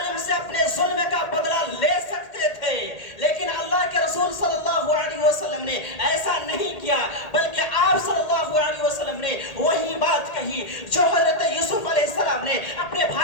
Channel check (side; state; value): right; late; 1.8 ms